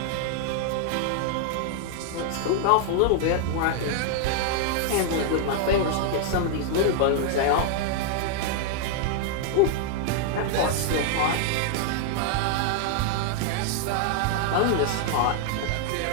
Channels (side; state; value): both; different; correlation 0.00